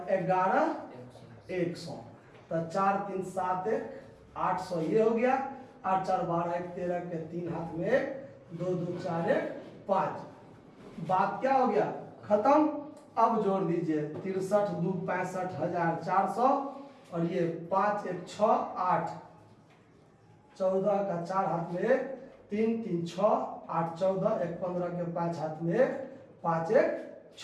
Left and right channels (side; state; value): both; identical; correlation 1.00